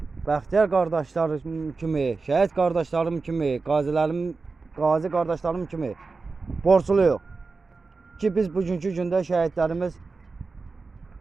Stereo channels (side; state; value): left; quieter; 4.1 dB